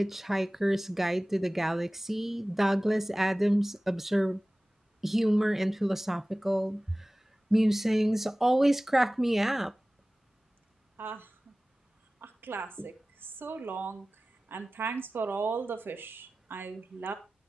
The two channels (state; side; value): normal; both; correlation 0.98